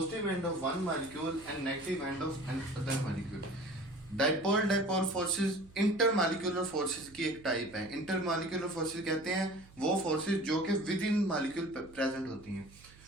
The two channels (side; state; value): right; noise; hum, 23 dB below the sound